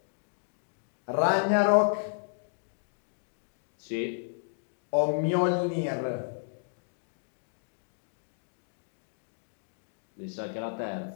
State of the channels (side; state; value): right; silent; digital silence